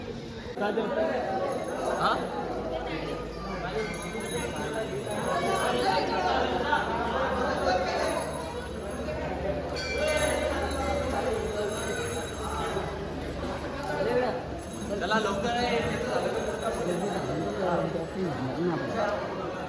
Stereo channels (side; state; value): both; identical; correlation 1.00